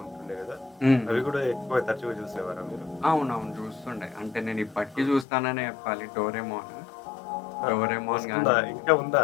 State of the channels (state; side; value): drops out; right; at 5.2 s